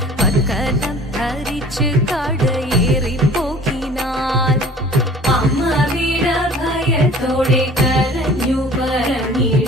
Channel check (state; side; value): normal; both; correlation 0.48